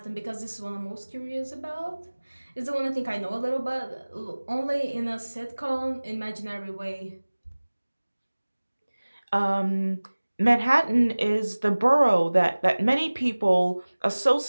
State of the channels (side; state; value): both; inverted; correlation -1.00